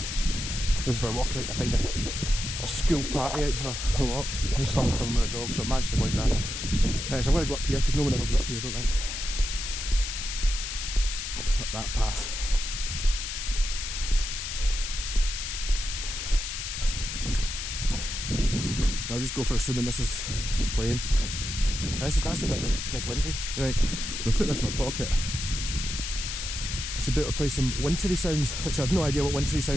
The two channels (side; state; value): left; noise; hiss, 5 dB below the sound